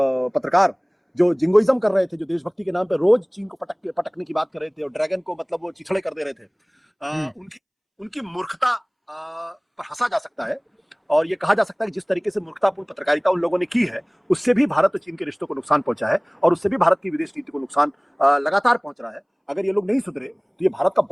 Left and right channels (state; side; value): identical; both; correlation 1.00